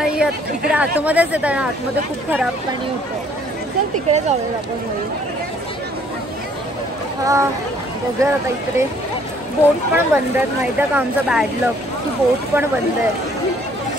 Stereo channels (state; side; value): normal; both; correlation 0.61